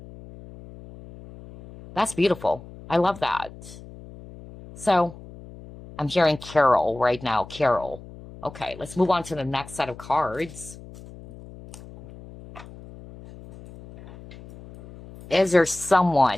That's beautiful. I love that. So, I'm hearing Carol right now. Carol. Okay, let's move on to the next set of cards. Is there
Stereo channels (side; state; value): left; noise; hum, 17 dB below the sound